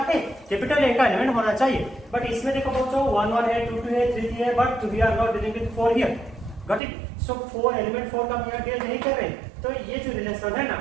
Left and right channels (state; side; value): drops out; left; at 6.8 s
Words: है? कैपिटल ए का एलिमेंट होना चाहिए। बट इसमें देखो बच्चों 1 1 है, 2 2 है, 3 3 है, but we are not dealing with 4 here. Got it? So 4 element 4 का हम यहाँ डील नहीं कर रहे, तो ये जो रिलेशन है ना,